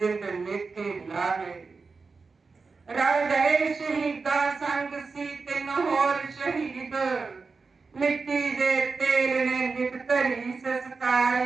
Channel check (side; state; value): left; quieter; 4.5 dB